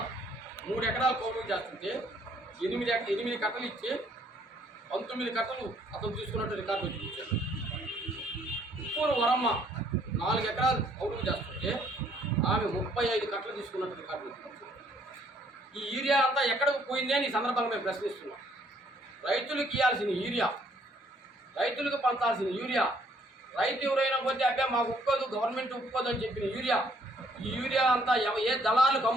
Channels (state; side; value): normal; both; correlation 0.65